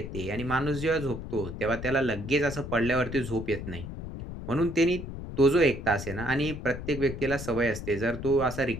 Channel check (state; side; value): noise; left; rumble, 8 dB below the sound